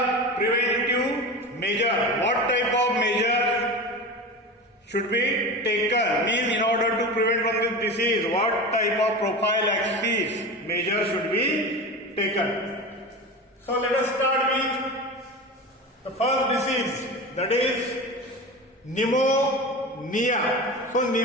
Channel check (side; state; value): both; normal; correlation 0.28